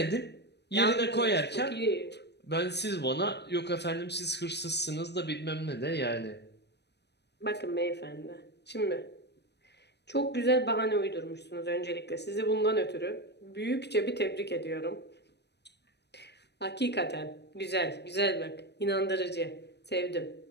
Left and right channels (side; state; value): right; late; 0.49 ms